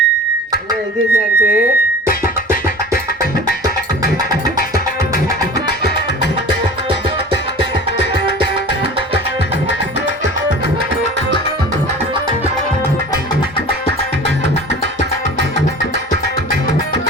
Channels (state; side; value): normal; both; correlation 0.39